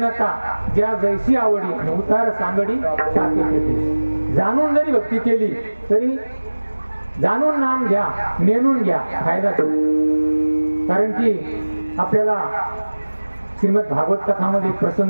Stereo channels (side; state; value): both; inverted; correlation -1.00